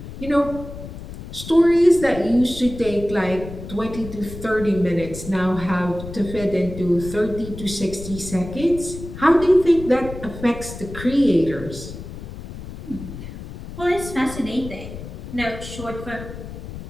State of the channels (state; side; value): noise; left; rumble, 11 dB below the sound